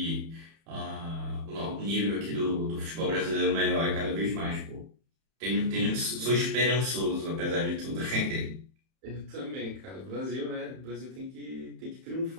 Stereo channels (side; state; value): left; late; 31 ms